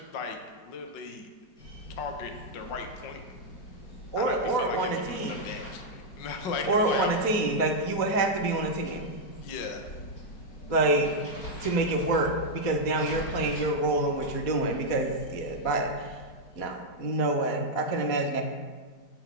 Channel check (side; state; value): right; late; 4.2 ms